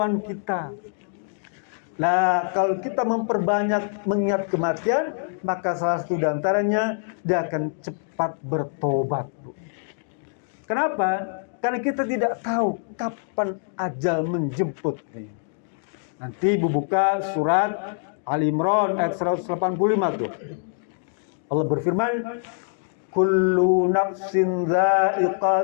kita. Nah, kalau kita memperbanyak mengingat kematian, maka salah satu diantaranya dia akan cepat bertobat, Bu. Kenapa? Karena kita tidak tahu kapan ajal menjemput. Nanti Ibu buka surat Ali Imran ayat 185 tuh. Allah berfirman, kullu nafsin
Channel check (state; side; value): silent; right; digital silence